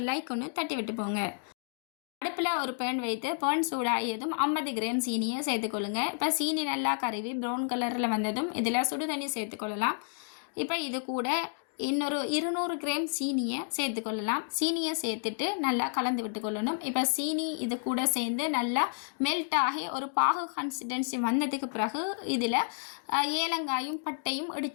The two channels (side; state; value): right; silent; digital silence